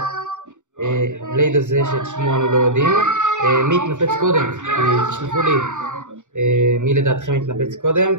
בלייד הזה שאת שמו אנו לא יודעים, מי התנפץ קודם. תשלחו לי מי לדעתכם התנפץ קודם,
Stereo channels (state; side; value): late; left; 0.85 ms